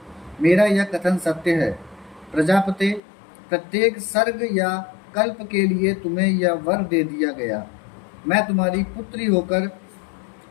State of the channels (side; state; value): right; drops out; at 3.0 s